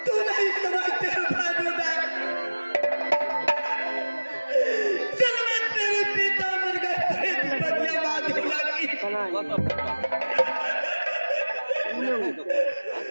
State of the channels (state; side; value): inverted; both; correlation -1.00